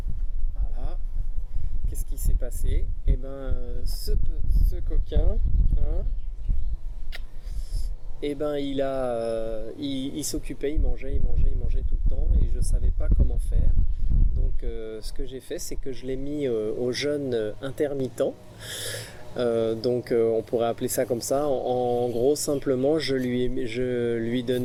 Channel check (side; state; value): both; identical; correlation 1.00